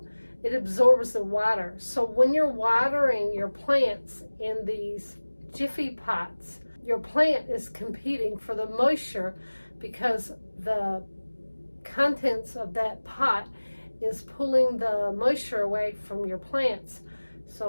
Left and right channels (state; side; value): inverted; both; correlation -1.00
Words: It absorbs the water. So when you're watering your plants in these Jiffy pots, your plant is competing for the moisture because the contents of that pot is pulling the moisture away from your plants.